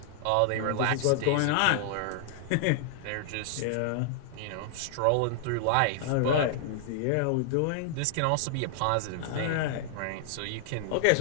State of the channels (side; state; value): both; different; correlation -0.01